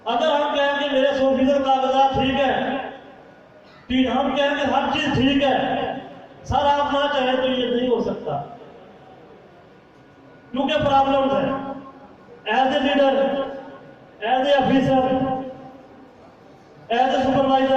اگر ہم کہیں کہ میرے 100% کاغذات ٹھیک ہے، ہم کہیں کہ ہر چیز ٹھیک ہے، سر آپ نہ چاہیں تو یہ نہیں ہو سکتا، کیونکہ پرابلمز ہیں۔ As a leader, as a officer, as a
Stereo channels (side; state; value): both; identical; correlation 1.00